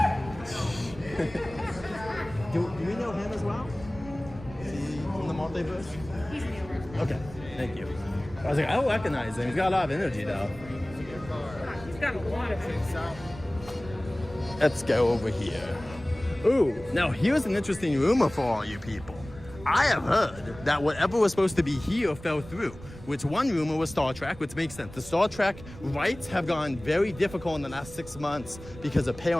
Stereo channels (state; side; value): noise; right; rumble, 16 dB below the sound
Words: Do we know him as well? Is he from the multiverse? He's the other. Okay, thank you. I was like, I don't recognize him. He's got a lot of energy, though. He's got a lot of things. Let's go over here. Ooh, now here's an interesting rumor for all you people. I have heard that whatever was supposed to be here fell through, which one rumor was Star Trek, which makes sense. The Star Trek rights have gone very difficult in the last 6 months because of